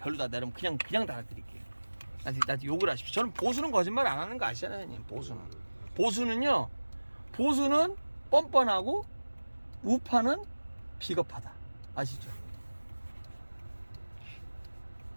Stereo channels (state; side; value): inverted; both; correlation -1.00